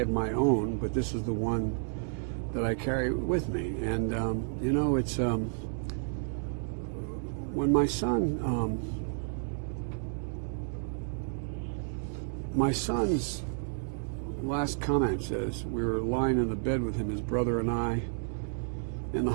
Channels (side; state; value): left; silent; digital silence